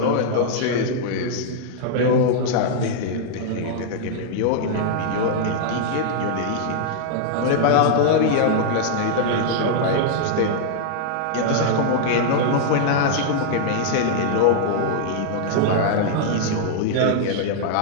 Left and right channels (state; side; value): different; both; correlation -0.01